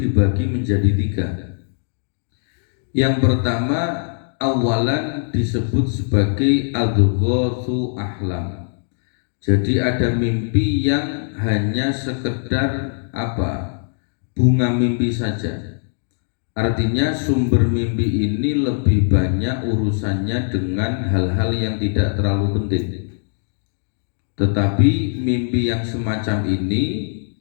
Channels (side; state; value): right; silent; digital silence